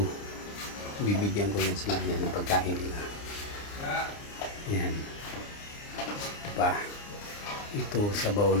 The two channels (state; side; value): late; right; 29 ms